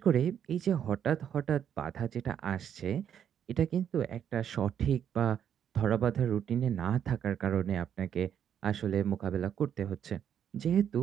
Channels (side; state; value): left; quieter; 9.0 dB